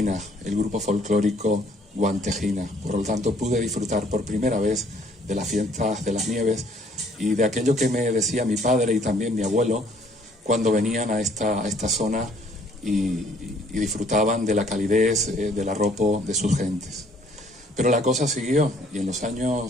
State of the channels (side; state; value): both; normal; correlation 0.61